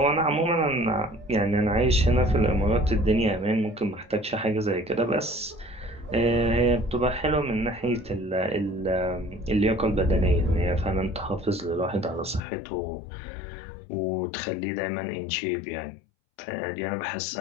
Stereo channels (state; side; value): drops out; right; at 12.4 s